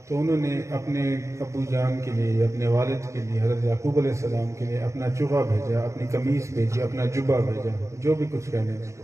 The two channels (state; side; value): late; left; 0.14 ms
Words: تو انہوں نے اپنے ابو جان کے لیے، اپنے والد کے لیے، حضرت یعقوب علیہ السلام کے لیے اپنا چوغا بھیجا، اپنی قمیص بھیجی، اپنا جبہ بھیجا، جو بھی کچھ کہنے اس کو،